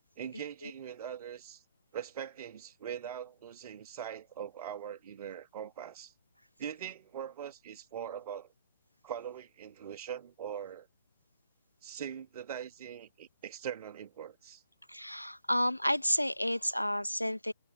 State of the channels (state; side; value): inverted; both; correlation -0.79